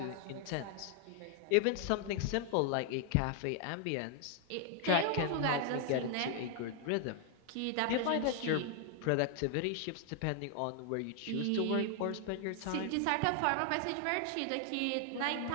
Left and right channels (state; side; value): different; both; correlation 0.00